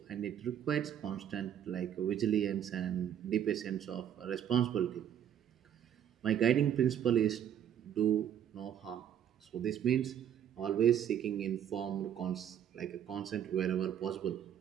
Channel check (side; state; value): left; quieter; 9.7 dB